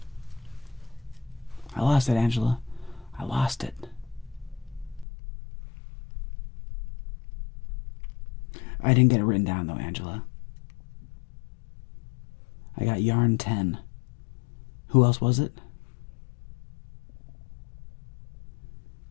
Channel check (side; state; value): right; drops out; at 5.1 s